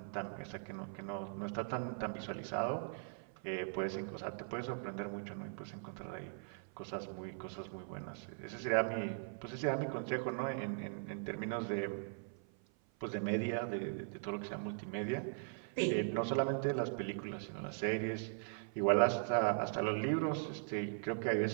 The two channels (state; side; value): silent; left; 51 dB below the other